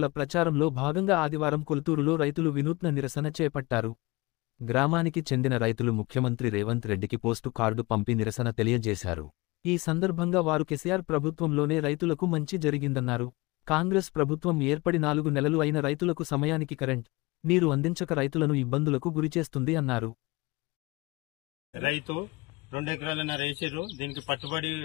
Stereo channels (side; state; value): right; quieter; 23.7 dB